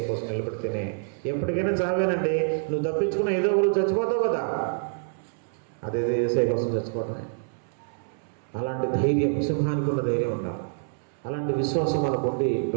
కోసం నిలబడితేనే ఎప్పటికైనా చావేనండి. నువ్వు తప్పించుకున్న ఏదో ఒకరు చచ్చిపోతావు కదా, అదేదో యేసయ్య కోసం చచ్చిపోతాయి. అలాంటి ధైర్యం, సింహానికి ఉన్న ధైర్యం ఉండాలి. అలాంటి విశ్వాసం మనకు ఉండి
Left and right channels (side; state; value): left; silent; 60 dB below the other